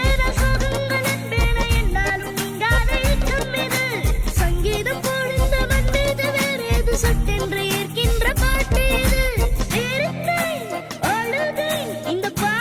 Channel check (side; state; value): both; identical; correlation 1.00